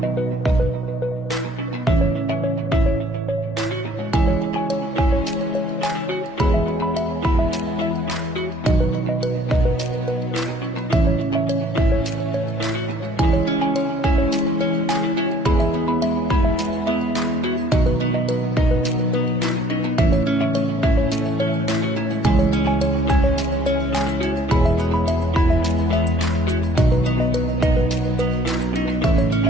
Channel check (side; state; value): both; normal; correlation 0.57